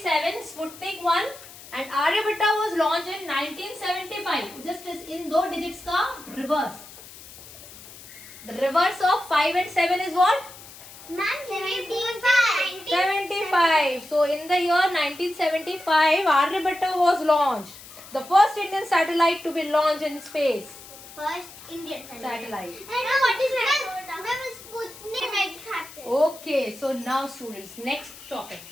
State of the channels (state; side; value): noise; left; hiss, 17 dB below the sound